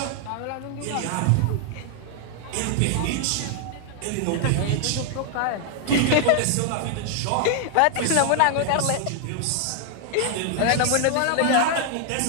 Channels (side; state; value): both; different; correlation 0.00